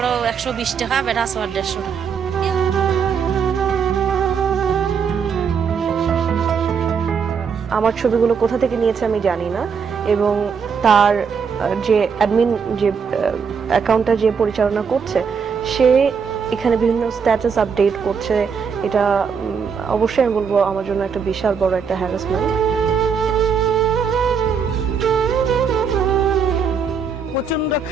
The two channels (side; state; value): left; quieter; 6.2 dB